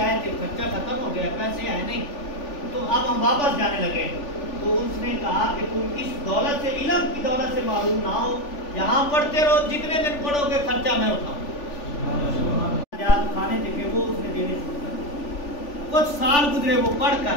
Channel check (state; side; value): late; right; 3.4 ms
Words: آئے تھے، خرچہ ختم ہو گیا، پیسے آئے نہیں، تو اب ہم واپس جانے لگے۔ تو اس نے کہا کہ تم اس دولت سے، علم کی دولت سے معروف نہ ہو، یہاں پڑھتے رہو، جتنے دن پڑھو گے خرچہ میں اٹھاؤں۔ کھانے تھے وہ اس نے دینے شروع کر دیا۔ کچھ سال گزرے، وہ پڑھ